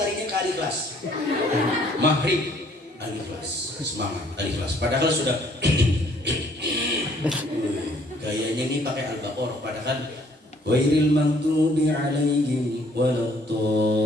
ke Al-Ikhlas. Maghrib Al-Ikhlas, semangat Al-Ikhlas. Padahal sudah gayanya ini pakai Al-Baqarah. Padahal Ghairil maghdubi alaihim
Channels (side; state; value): both; normal; correlation 0.61